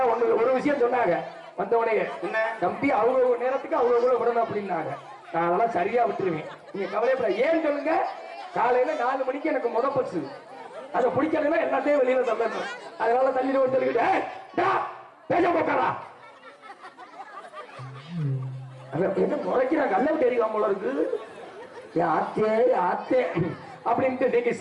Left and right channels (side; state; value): both; identical; correlation 1.00